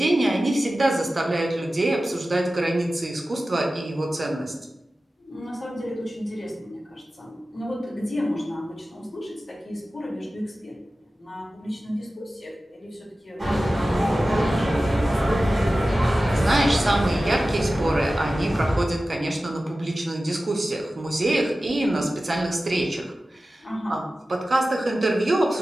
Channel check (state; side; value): normal; both; correlation 0.95